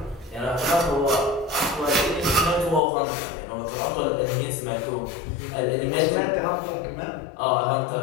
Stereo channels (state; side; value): drops out; right; at 2.8 s